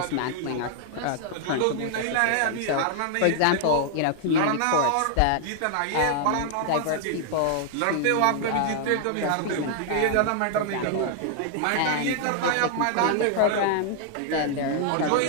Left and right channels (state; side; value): different; both; correlation 0.00